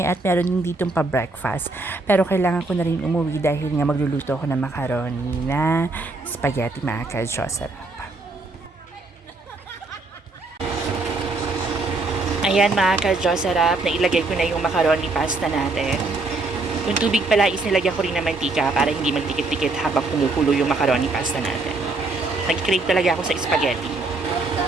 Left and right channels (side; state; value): left; quieter; 3.2 dB